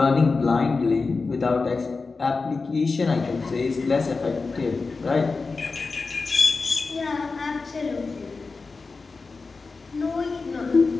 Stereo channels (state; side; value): quieter; right; 4.2 dB